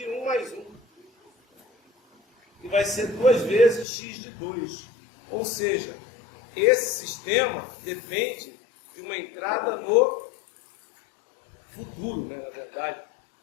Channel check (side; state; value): right; drops out; at 3.9 s